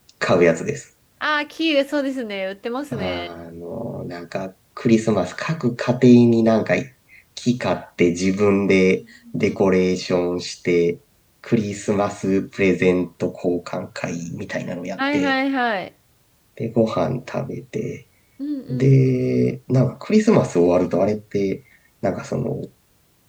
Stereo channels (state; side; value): identical; both; correlation 1.00